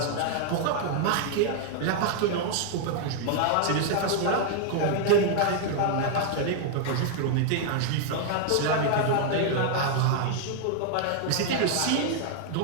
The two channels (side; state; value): both; different; correlation 0.00